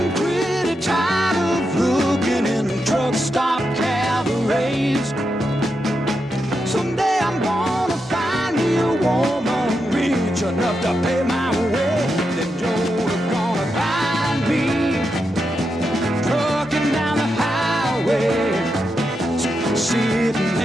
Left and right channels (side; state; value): both; normal; correlation 0.86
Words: pretty tired of looking in truck stop cabarets. Someday I'm gonna find me a woman rich enough to pay my way. Then Joe's gonna find me trucking down the highway, sitting